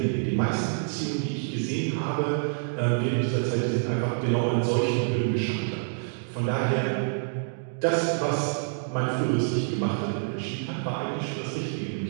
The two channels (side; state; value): left; silent; digital silence